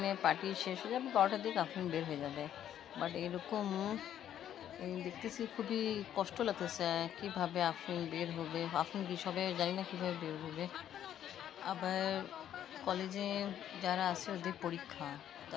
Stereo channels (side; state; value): right; quieter; 10.6 dB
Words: পার্টি শেষ হয়ে যাবে, 12টার দিকে আফরিন বের হয়ে যাবে, বাট এরকম দেখতেছি খুবই কষ্ট লাগতেছে। কীভাবে আফরিন বের হবে, আফরিন কী সবে জানি না কীভাবে বের হবে। আবার কলেজে যারা আছে ওদের পরীক্ষা, তা